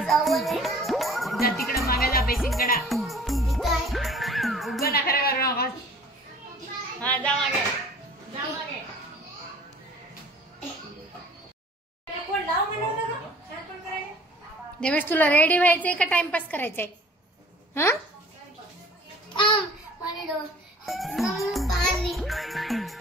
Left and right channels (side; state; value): both; normal; correlation 0.49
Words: जा तिकडे मागे जा, बेसिंगकडे उभं ना खरं करू नका. हा, जा मागे. देवेश तुला रेडी व्हायचंय का टाइमपास करायचंय? हा,